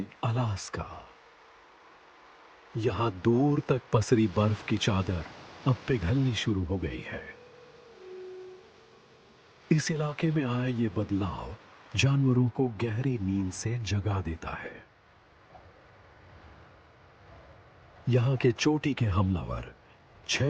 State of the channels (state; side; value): identical; both; correlation 1.00